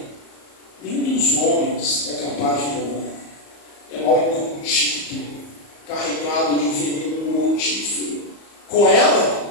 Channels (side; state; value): right; late; 34 ms